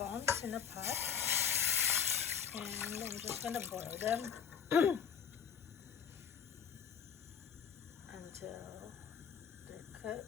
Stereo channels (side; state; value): right; quieter; 7.5 dB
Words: in a pot and I'm just gonna boil them until they're